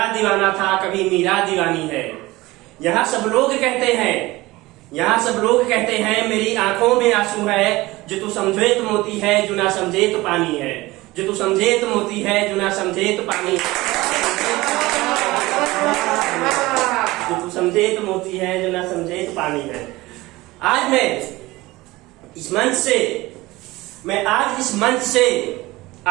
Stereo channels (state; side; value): quieter; left; 19.8 dB